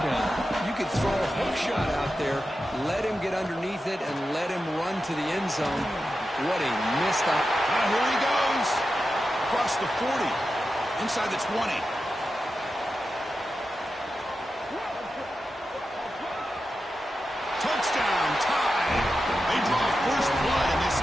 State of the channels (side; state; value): both; normal; correlation 0.91